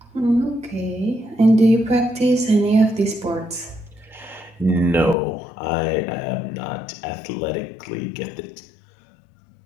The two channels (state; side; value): drops out; right; at 5.2 s